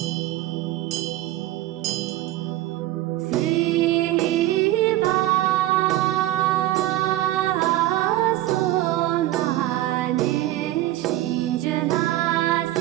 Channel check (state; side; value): quieter; left; 15.4 dB